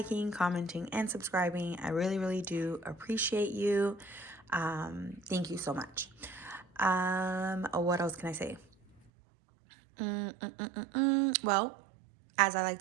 commenting, and subscribing, I really, really do appreciate you. Thank you so much. What else can I say? Well, as I like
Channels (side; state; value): left; drops out; at 9.0 s